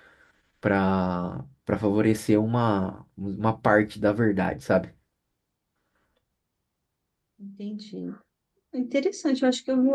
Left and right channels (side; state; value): both; identical; correlation 1.00